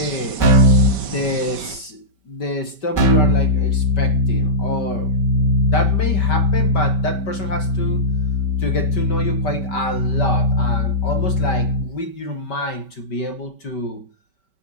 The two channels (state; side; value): late; right; 5.2 ms